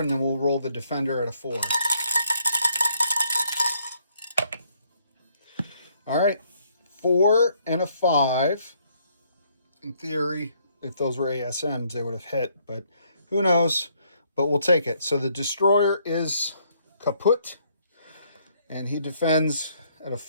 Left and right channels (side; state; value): both; inverted; correlation -0.68